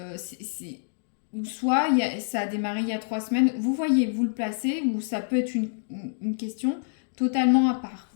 Ou soit ça a démarré il y a 3 semaines. Vous voyez, vous le placez, ou ça peut être une question totalement à part.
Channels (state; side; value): silent; right; digital silence